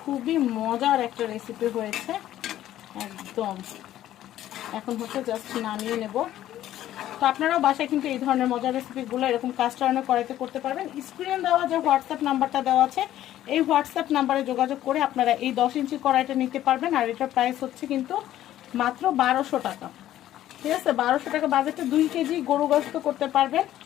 খুবই মজার একটা রেসিপি হয়েছে একদম। এখন হচ্ছে জাস্ট নামিয়ে নেব। তো আপনারাও বাসায় কিন্তু এই ধরনের মজার রেসিপিগুলো এরকম কাস্ট আয়রনের কড়াইতে করতে পারবেন। স্ক্রিনে দেওয়া যে হোয়াটসঅ্যাপ নাম্বারটা দেওয়া আছে এই হোয়াটসঅ্যাপ নাম্বারে যোগাযোগ করে আপনারা এই 10 ইঞ্চি কড়াইটা নিতে পারবেন। আর এটার প্রাইস হচ্ছে কিন্তু মাত্র 1200 টাকা। ঠিক আছে, 1200 টাকা বাজেটে 2 কেজি গরু গোশত করতে পারবেন।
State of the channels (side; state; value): right; quieter; 12.9 dB